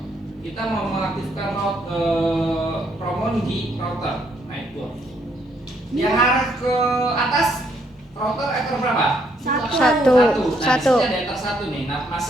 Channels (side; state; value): both; normal; correlation 0.71